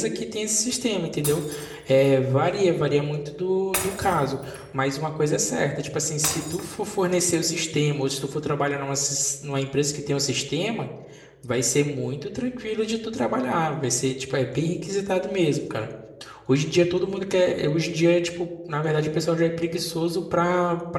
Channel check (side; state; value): both; identical; correlation 1.00